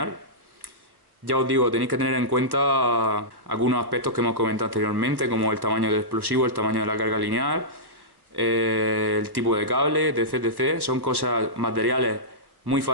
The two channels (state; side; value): late; left; 1.1 ms